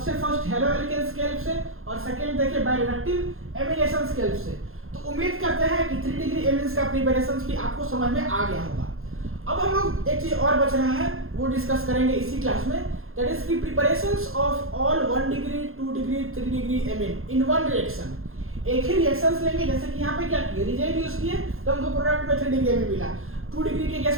फर्स्ट हेलो एल्केन्स के हेल्प से, और सेकंड देखे बायरिडक्टिव एमिनेशन के हेल्प से. तो उम्मीद करते हैं कि 3 डिग्री एमिनेंस का प्रिपरेशन भी आपको समझ में आ गया होगा. अब हम लोग एक चीज और बच रहा है, वो डिस्कस करेंगे इसी क्लास में, दैट इज की preparations of all 1 degree 2 degree 3 degree amine in one reaction. एक ही रिएक्शंस लेंगे. जैसे कि यहाँ पे क्या किए, रिएजेंट यूज किए तो हमको प्रोडक्ट में 3 डिग्री एमिन मिला. 2 डिग्री के केस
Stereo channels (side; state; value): left; late; 0.61 ms